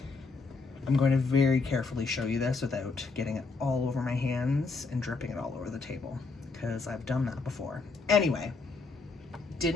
I'm going to very carefully show you this without getting it all over my hands and dripping it all over the table, because I've done that before. Anyway,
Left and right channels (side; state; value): right; quieter; 4.2 dB